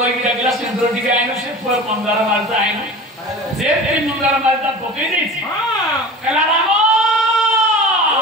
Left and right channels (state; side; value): normal; both; correlation 0.36